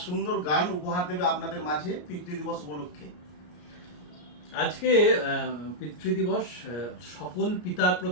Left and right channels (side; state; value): right; late; 33 ms